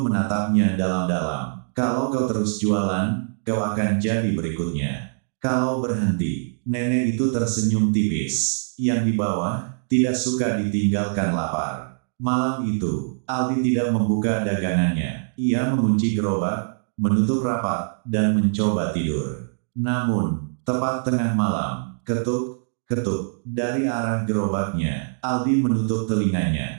dalam-dalam. Kalau kau terus jualan, kau akan jadi berikutnya. Kalau berhenti, nenek itu tersenyum tipis. Yang di bawah, tidak suka ditinggalkan lapar. Malam itu, Aldi tidak membuka dagangannya. Ia mengunci gerobak, menutup rapat, dan mencoba tidur. Namun, tepat tengah malam, ketuk, ketuk, dari arah gerobaknya. Aldi menutup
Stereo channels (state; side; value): silent; left; digital silence